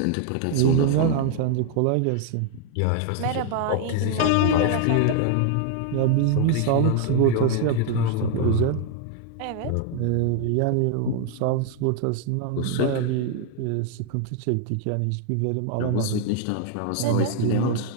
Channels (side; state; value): both; different; correlation 0.00